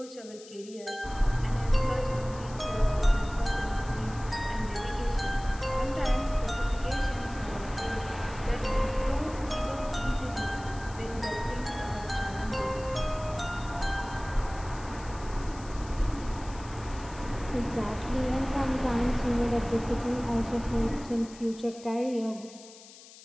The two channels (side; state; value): left; noise; hiss, 19 dB below the sound